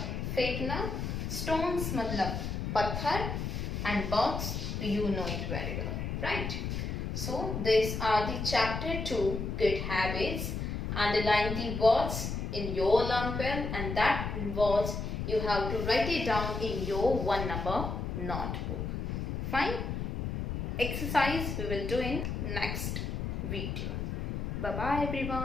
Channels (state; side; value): noise; left; rumble, 3 dB below the sound